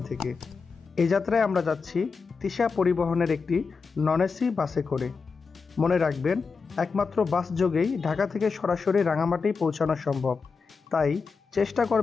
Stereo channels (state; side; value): quieter; right; 5.0 dB